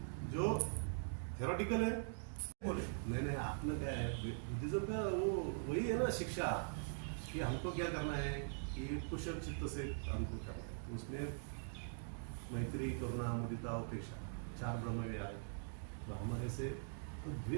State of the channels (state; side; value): silent; left; digital silence